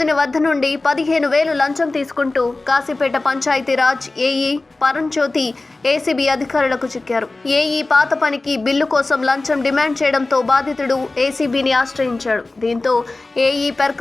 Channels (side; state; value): right; quieter; 3.2 dB